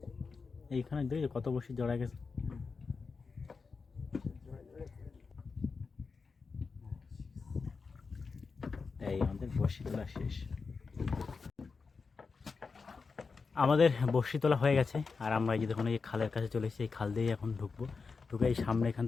এইখানে দেখি কত বড়শি জড়া গেছে। এই আমাদের বড়শি তোলা শেষ। আমাদের বড়শি তোলা হয়ে গেছে, আর আমরা এই যে দেখুন এই খালের কাছে চলে এসেছি। এই খাল দিয়েই এখন ঢুকবো, ঢুকে এই সামনে এখান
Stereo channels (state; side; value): quieter; right; 4.8 dB